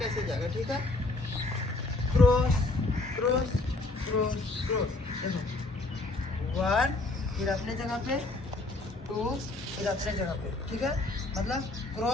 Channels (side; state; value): right; quieter; 3.1 dB